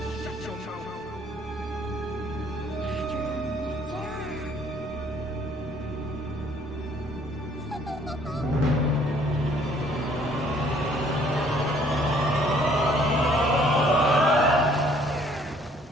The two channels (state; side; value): normal; both; correlation 0.60